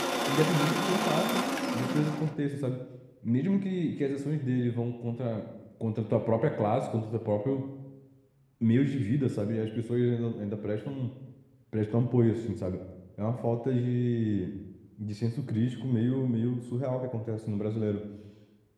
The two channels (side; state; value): both; identical; correlation 1.00